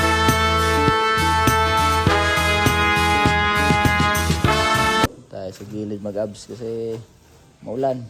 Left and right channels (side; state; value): both; identical; correlation 1.00